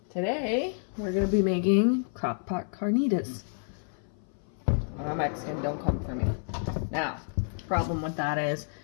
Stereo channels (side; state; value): right; silent; 57 dB below the other